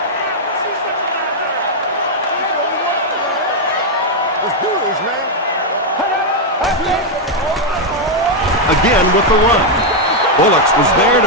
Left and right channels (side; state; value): both; normal; correlation 0.00